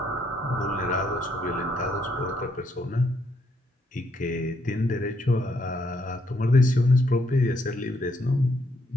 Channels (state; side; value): normal; both; correlation 0.73